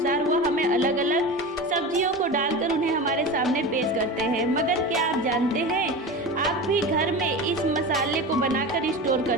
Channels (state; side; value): normal; both; correlation 0.28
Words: वह हमें अलग अलग सब्जियों को डालकर उन्हें हमारे सामने पेश करते हैं। मगर क्या आप जानते हैं, आप भी घर में इस मसाले को बनाकर स्टोर